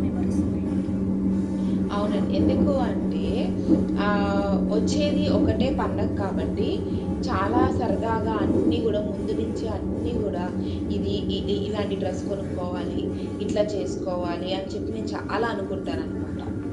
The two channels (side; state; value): both; identical; correlation 1.00